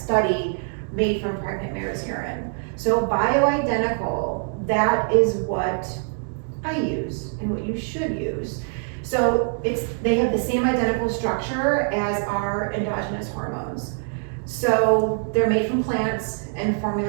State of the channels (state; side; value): silent; left; 59 dB below the other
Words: made from pregnant mare's urine. So bioidentical, that is what I use and what you should use. So they have the same identical structure as our endogenous hormones. So they're made from plants and